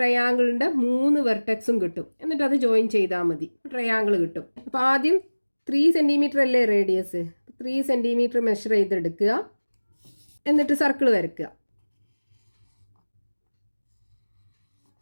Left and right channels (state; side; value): inverted; both; correlation -1.00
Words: 3 വെർട്ടെക്സും കിട്ടും. എന്നിട്ട് അത് ജോയിൻ ചെയ്താൽ മതി, ട്രയാങ്കിൾ കിട്ടും. അപ്പോൾ ആദ്യം 3 സെൻറ്റിമീറ്റർ അല്ലേ റേഡിയസ്? 3 സെൻറ്റിമീറ്റർ മെഷർ ചെയ്തെടുക്കുക. എന്നിട്ട് സർക്കിൾ വരയ്ക്കുക.